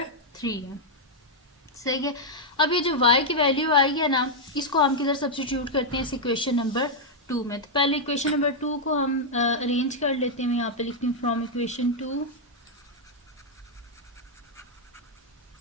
3 है। सही है। अब ये जो y की वैल्यू आई है ना, इसको हम किधर सब्स्टिट्यूट करते हैं इस इक्वेशन नंबर 2 में। तो पहले इक्वेशन नंबर 2 को हम अरेंज कर लेते हैं। मैं यहाँ पे लिखती हूँ फ्रॉम इक्वेशन 2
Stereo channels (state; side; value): normal; both; correlation -0.03